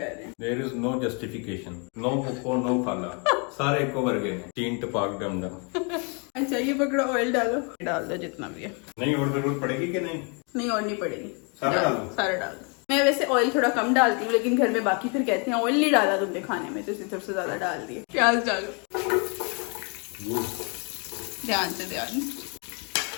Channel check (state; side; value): quieter; right; 35.3 dB